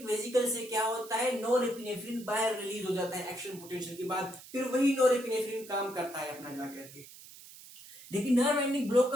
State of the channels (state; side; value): noise; right; hiss, 18 dB below the sound